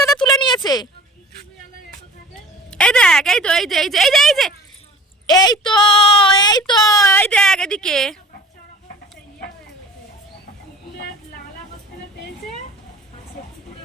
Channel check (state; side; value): normal; both; correlation 0.44